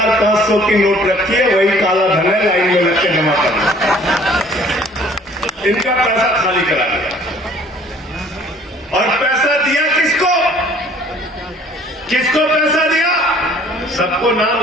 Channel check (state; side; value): normal; both; correlation 0.55